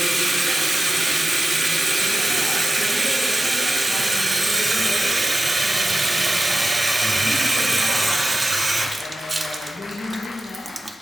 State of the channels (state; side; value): normal; both; correlation 0.94